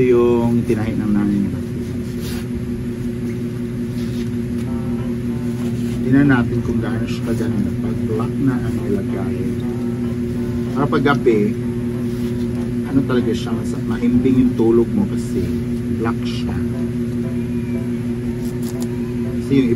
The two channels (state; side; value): identical; both; correlation 1.00